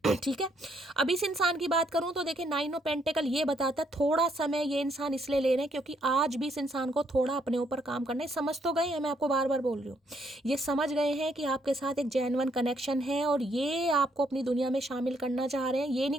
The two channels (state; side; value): normal; both; correlation 0.72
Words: ठीक है। अब इस इंसान की बात करूं तो देखिए 9 ऑफ पेंटिकल ये बताता है थोड़ा समय ये इंसान इसलिए ले रहे हैं क्योंकि आज भी इस इंसान को थोड़ा अपने ऊपर काम करना है। समझ तो गए हैं, मैं आपको बार बार बोल रही हूँ, ये समझ गए हैं कि आपके साथ एक जेन्युइन कनेक्शन है और ये आपको अपनी दुनिया में शामिल करना चाह रहे हैं। ये